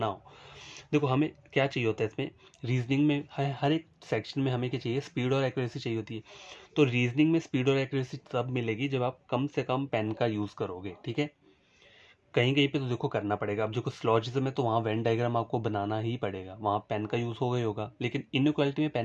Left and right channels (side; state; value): both; identical; correlation 1.00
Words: हो। देखो हमें क्या चाहिए होता है इसमें, रीजनिंग में हर एक सेक्शन में हमें क्या चाहिए, स्पीड और एक्यूरेसी चाहिए होती है। तो रीजनिंग में स्पीड और एक्यूरेसी तब मिलेगी जब आप कम से कम पेन का यूज़ करोगे, ठीक है। कहीं कहीं पे तो देखो करना पड़ेगा, अब जो स्लॉजिज्म है तो वहाँ वेन डायग्राम आपको बनाना ही पड़ेगा, वहाँ पेन का यूज़ होगा ही होगा, लेकिन इनइक्वालिटी में